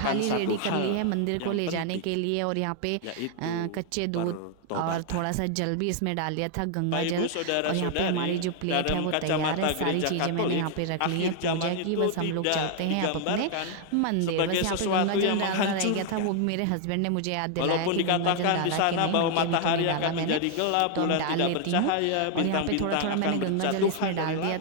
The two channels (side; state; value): both; different; correlation 0.00